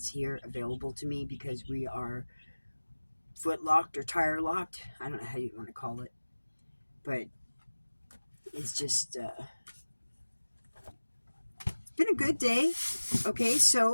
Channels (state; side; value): inverted; both; correlation -1.00